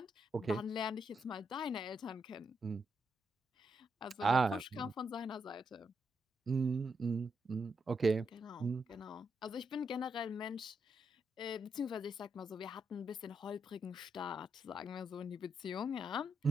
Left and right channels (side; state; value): both; normal; correlation 0.81